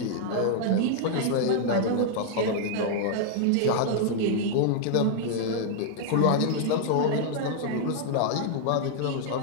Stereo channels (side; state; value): both; different; correlation -0.01